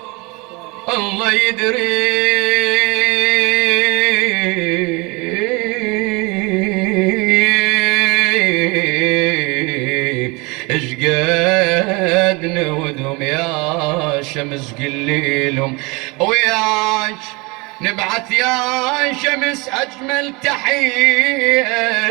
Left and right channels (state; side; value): quieter; left; 26.9 dB